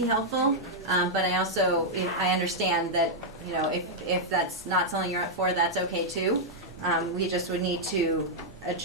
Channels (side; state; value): both; normal; correlation -0.04